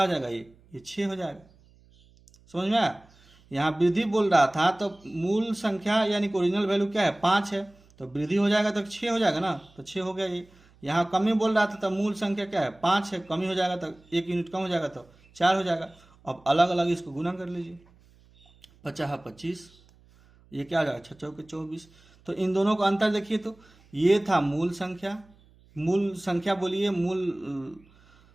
हो जाएगा ये 6 हो जाएगा, समझ में आया। यहाँ वृद्धि बोल रहा था तो मूल संख्या यानी कि ओरिजिनल वैल्यू क्या है 5 है, तो वृद्धि हो जाएगा तो 6 हो जाएगा ना, तो 6 हो गया ये। यहाँ कमी बोल रहा था तो मूल संख्या क्या है 5 है, कमी हो जाएगा तो 1 यूनिट कम हो जाएगा तो 4 हो जाएगा, अब अलग अलग इसको गुना कर लीजिए, 50 25, ये क्या आ जाएगा 6 चौके 24। तो इन दोनों का अंतर देखिए, तो ये था मूल संख्या बोलिए,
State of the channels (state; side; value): noise; right; hum, 29 dB below the sound